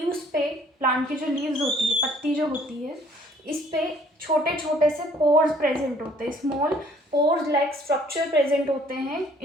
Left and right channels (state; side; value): normal; both; correlation 0.59